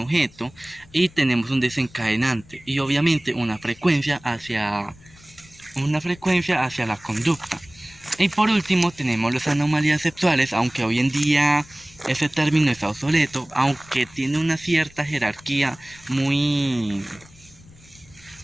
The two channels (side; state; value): left; noise; rumble, 25 dB below the sound